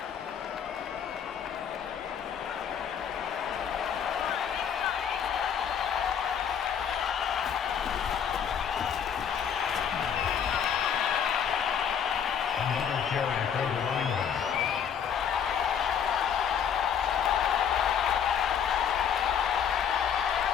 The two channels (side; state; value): right; quieter; 8.0 dB